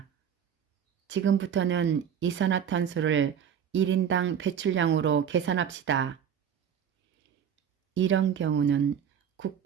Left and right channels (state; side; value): quieter; left; 8.4 dB